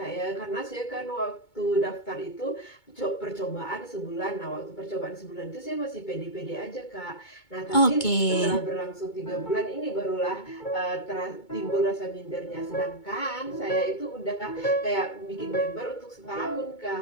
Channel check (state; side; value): late; right; 2.2 ms